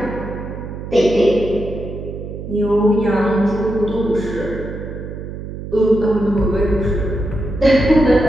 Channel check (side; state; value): right; noise; hum, 9 dB below the sound